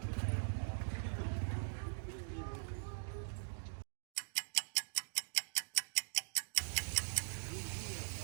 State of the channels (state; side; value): silent; left; digital silence